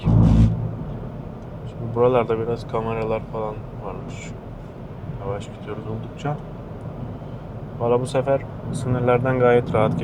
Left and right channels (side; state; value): both; identical; correlation 1.00